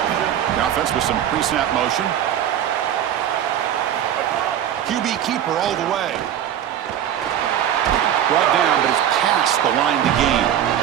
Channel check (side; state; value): left; quieter; 10.3 dB